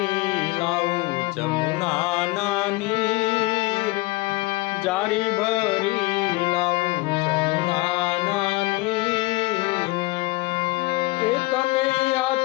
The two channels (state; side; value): quieter; right; 22.2 dB